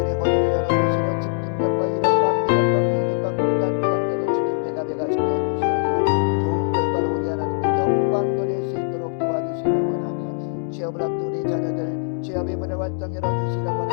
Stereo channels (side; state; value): right; silent; 64 dB below the other